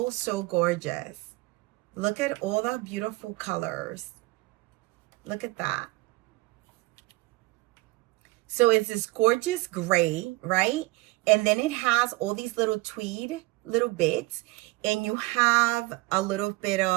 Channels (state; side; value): quieter; left; 21.5 dB